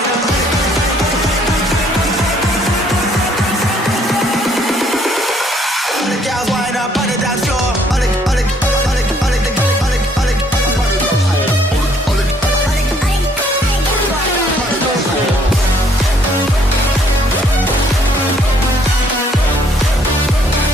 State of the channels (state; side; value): normal; both; correlation 0.65